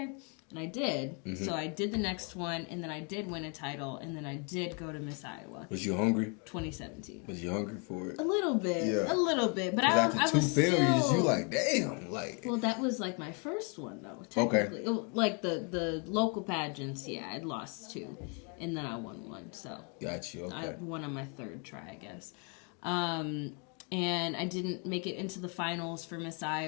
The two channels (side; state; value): right; quieter; 36.2 dB